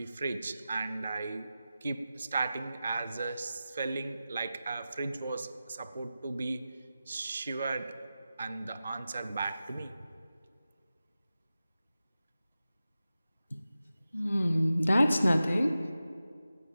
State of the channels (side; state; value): both; inverted; correlation -0.94